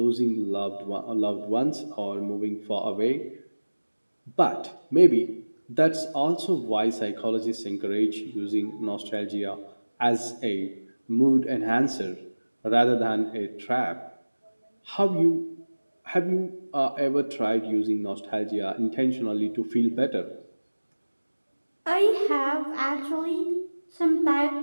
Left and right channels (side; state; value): both; inverted; correlation -1.00